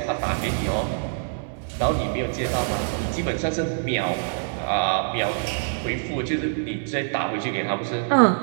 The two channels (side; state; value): left; silent; digital silence